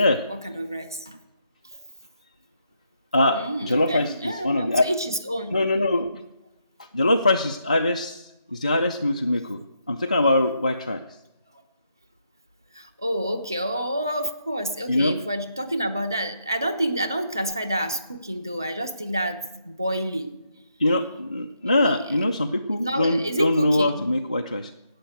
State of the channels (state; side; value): inverted; both; correlation -0.79